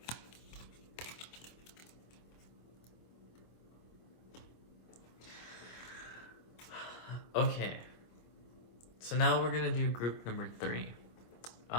Okay, so now we're gonna do group number 3.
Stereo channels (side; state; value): right; late; 25 ms